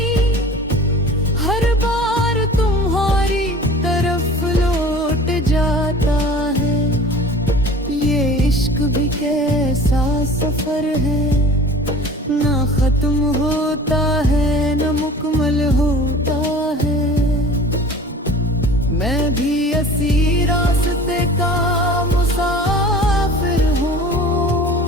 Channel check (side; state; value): both; normal; correlation 0.42